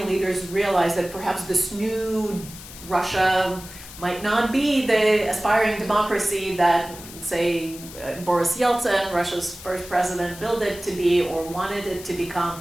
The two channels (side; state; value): left; noise; hiss, 15 dB below the sound